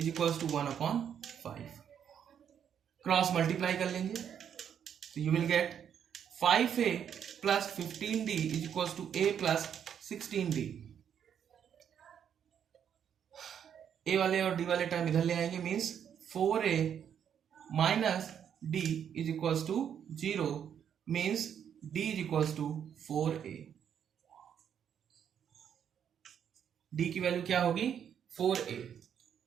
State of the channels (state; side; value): quieter; left; 8.6 dB